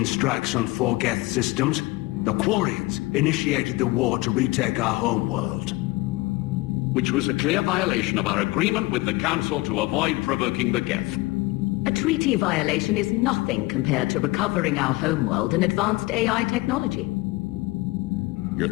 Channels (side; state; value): right; quieter; 21.7 dB